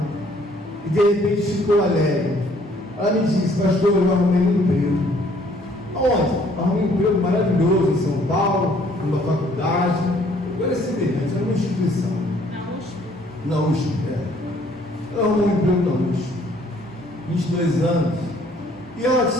e de repente ficou alegre. Ela me disse: pastor, eu arrumei um emprego. Aonde? Arrumei um emprego maravilhoso em São Paulo, numa faculdade. Agora é semelhante, era uma instituição. Na USP, ela arrumou um emprego na USP, 22 anos, e ela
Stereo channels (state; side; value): normal; both; correlation 0.61